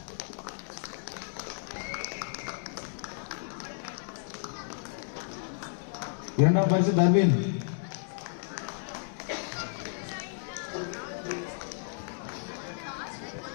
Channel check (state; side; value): silent; right; digital silence